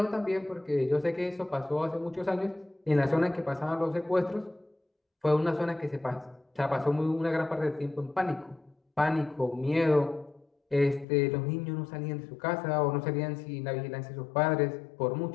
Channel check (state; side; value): drops out; right; at 11.1 s